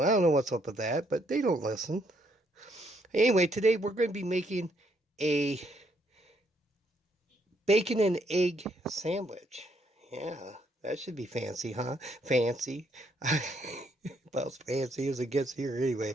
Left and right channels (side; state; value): both; normal; correlation 0.72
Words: I don't know what's up with that, but they don't listen. Anyway, today we're going to be making a bacon and egg sandwich. Yeah, that should be fancy, huh? Fancy. About as fancy as it gets here